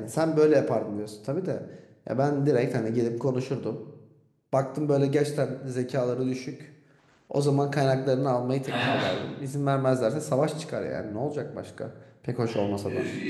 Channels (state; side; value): identical; both; correlation 1.00